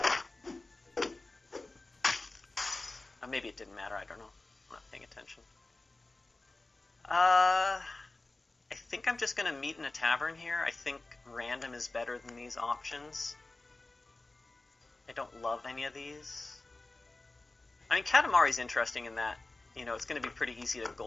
maybe it didn't matter, I don't know. I'm not paying attention. I think I'm just going to meet in a tavern here. I think random is better than these options. I don't love any of these. I mean, Katamari's interesting in that, it's going to be pretty easy to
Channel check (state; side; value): quieter; right; 3.1 dB